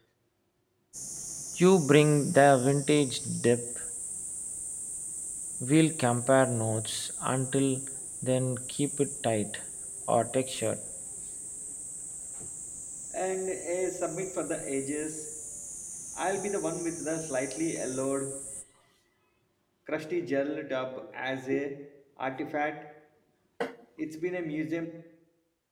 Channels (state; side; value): identical; both; correlation 1.00